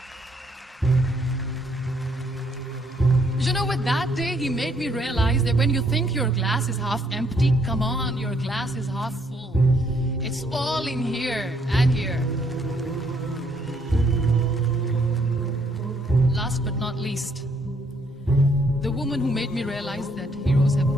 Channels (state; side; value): normal; both; correlation 0.69